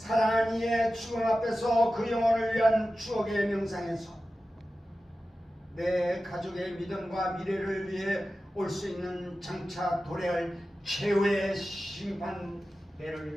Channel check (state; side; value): normal; both; correlation 0.94